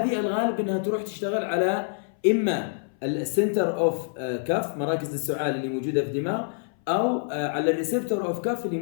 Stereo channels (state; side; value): silent; right; 58 dB below the other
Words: الغالب انها تروح تشتغل على اما السنتر اوف كاف، مراكز السعال اللي موجوده في الدماغ، او على الريسبتور اوف كاف اللي